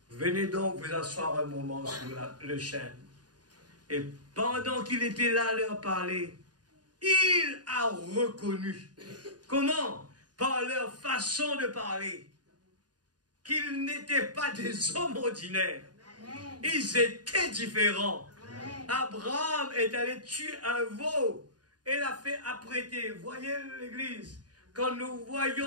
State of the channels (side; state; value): left; late; 0.69 ms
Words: venez donc vous asseoir un moment sur le chêne. Et pendant qu'il était là à leur parler, il a reconnu. Comment? Par leur façon de parler. Qu'ils n'étaient pas des hommes ordinaires. Ils étaient différents. Abraham est allé tuer un veau et l'a fait apprêter. Voyez l'église, quand nous